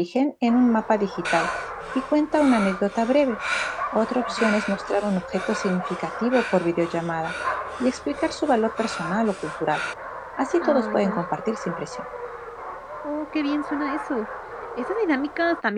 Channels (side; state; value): both; identical; correlation 1.00